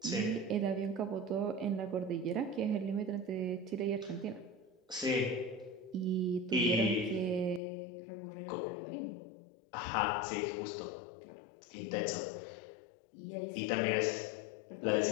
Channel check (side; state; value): right; drops out; at 7.6 s